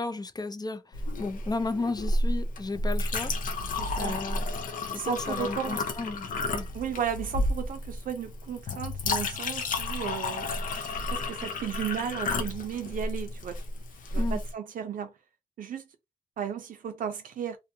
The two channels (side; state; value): both; normal; correlation 0.50